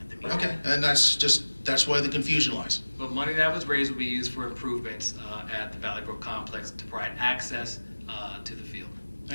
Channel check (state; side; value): inverted; both; correlation -1.00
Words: the meeting. Okay, and that's why the confusion lies. But money that was raised will be used for improvements at the Valley Brook complex to provide access to the field.